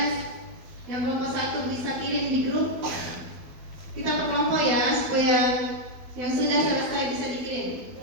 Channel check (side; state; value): left; late; 12 ms